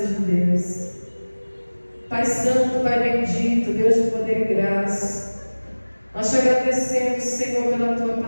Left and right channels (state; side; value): inverted; both; correlation -1.00